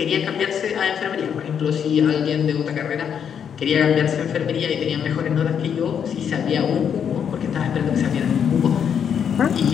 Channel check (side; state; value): right; quieter; 7.9 dB